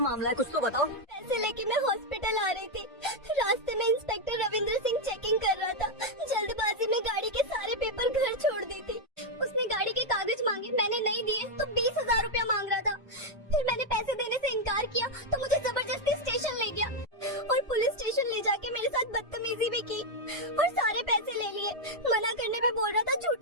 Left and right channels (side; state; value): both; normal; correlation 0.01